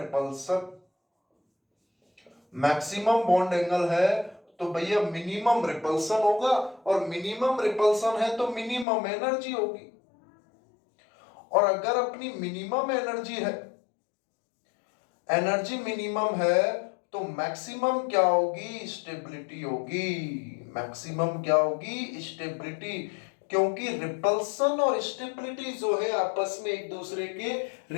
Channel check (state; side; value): drops out; right; at 8.8 s